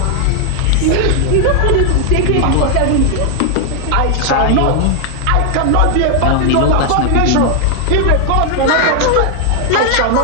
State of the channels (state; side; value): different; both; correlation 0.00